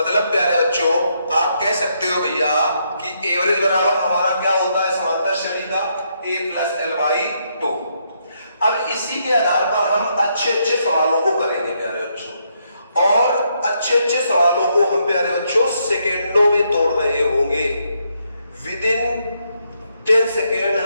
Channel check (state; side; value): inverted; both; correlation -0.76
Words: प्यारे बच्चों आप कह सकते हो भैया कि एवरेज बराबर हमारा क्या होता है समांतर श्रेणी का a प्लस एल बाई 2। अब इसी के आधार पर हम अच्छे अच्छे सवालों को करेंगे प्यारे बच्चों, और अच्छे अच्छे सवालों को हम प्यारे बच्चों सेकेंडों में तोड़ रहे होंगे। विद इन 10 सेकेंड